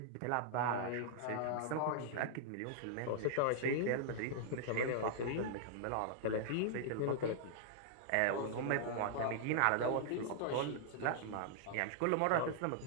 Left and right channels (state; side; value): different; both; correlation -0.01